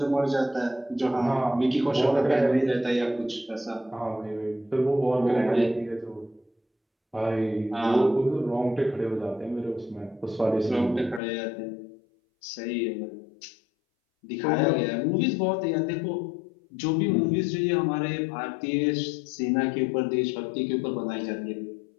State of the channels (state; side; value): drops out; right; at 11.2 s